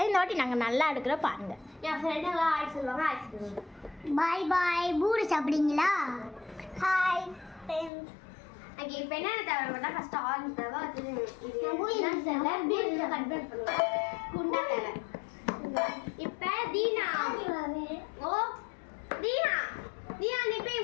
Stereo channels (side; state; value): right; drops out; at 7.9 s